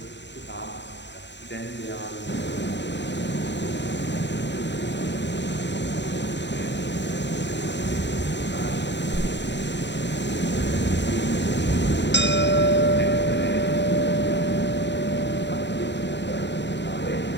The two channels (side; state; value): right; late; 0.52 ms